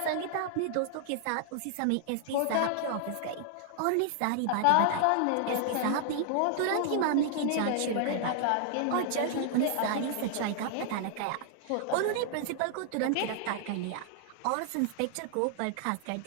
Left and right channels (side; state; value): both; different; correlation -0.01